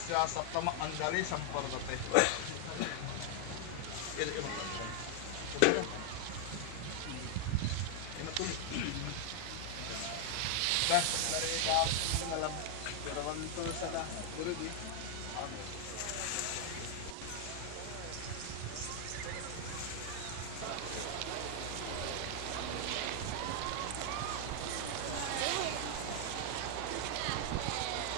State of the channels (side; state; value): both; different; correlation 0.00